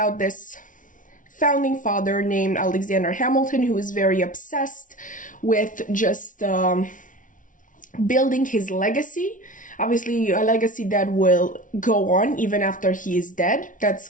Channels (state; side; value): late; right; 0.38 ms